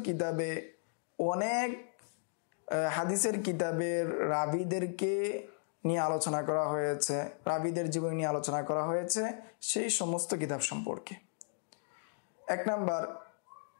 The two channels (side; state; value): right; silent; digital silence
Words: কিতাবে অনেক হাদিসের কিতাবের রাবীদেরকে নিয়ে আলোচনা করা হয়েছে, রাবীদের জীবনী নিয়ে আলোচনা করা হয়েছে, সেই সমস্ত কিতাব সম্পর্কে। এক নাম্বার,